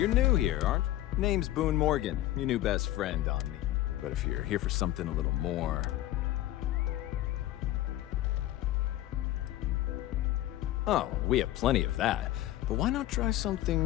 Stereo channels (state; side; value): quieter; right; 14.8 dB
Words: new here, aren't you? Name's Boone Morgan, your new best friend on me. But if you're here for something a little more... Oh, we have plenty of that. But why not try